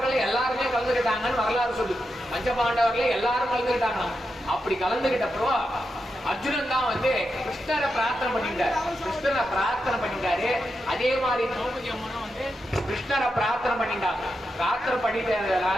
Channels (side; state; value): both; normal; correlation 0.87